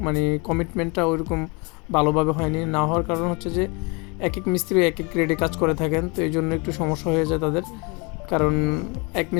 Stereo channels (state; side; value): quieter; right; 30.5 dB